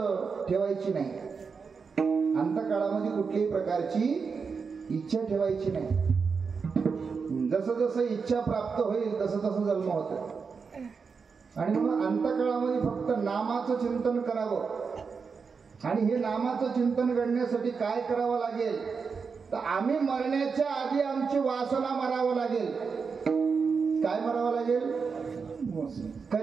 ठेवायची नाही. अंतकाळामध्ये कुठल्याही प्रकारची इच्छा ठेवायची नाही. जसं जसं इच्छा प्राप्त होईल तसं तसं जन्म होतो. आणि म्हणून अंतकाळामध्ये फक्त नामाचं चिंतन करावं. आणि हे नामाचं चिंतन करण्यासाठी काय करावं लागेल तर आम्ही मरण्याच्या आधी आमची वासना मारावं लागेल. काय मारावं लागेल?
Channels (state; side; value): quieter; left; 5.4 dB